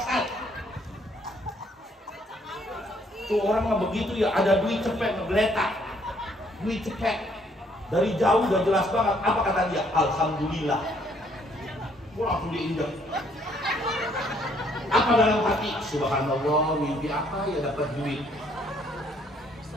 saat. Tuh orang mah begitu ya, ada duit cepet ngegeletak, duit cepet dari jauh udah jelas banget. Apa kata dia? Alhamdulillah. Gua langsung diinjak. Apa dalam hati? Subhanallah, mimpi apa ya dapat duit?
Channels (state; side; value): normal; both; correlation 0.66